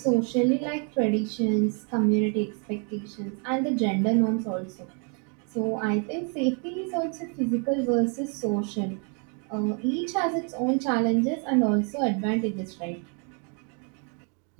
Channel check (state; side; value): quieter; left; 38.1 dB